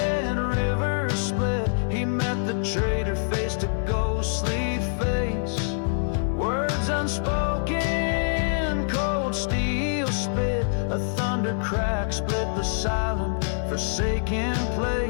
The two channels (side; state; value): right; silent; 62 dB below the other